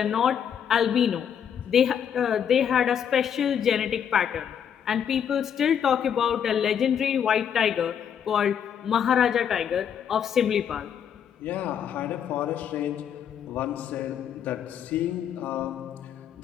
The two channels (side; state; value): right; quieter; 8.4 dB